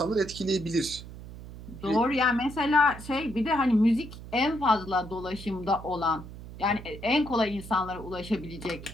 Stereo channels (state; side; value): noise; right; hum, 13 dB below the sound